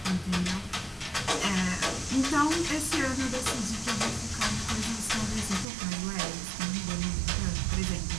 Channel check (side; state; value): left; drops out; at 5.7 s